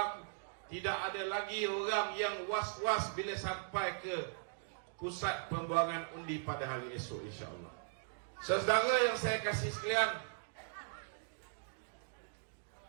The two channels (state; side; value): silent; left; digital silence